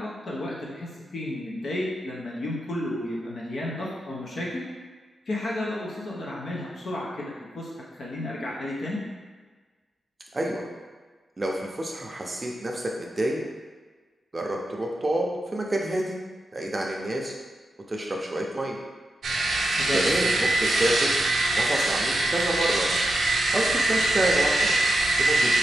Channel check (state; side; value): normal; both; correlation 0.87